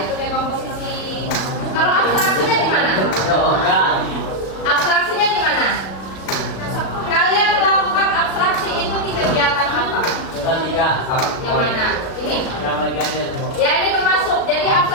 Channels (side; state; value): right; late; 37 ms